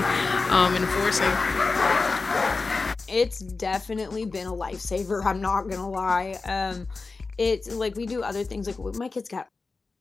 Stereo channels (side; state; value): right; quieter; 4.0 dB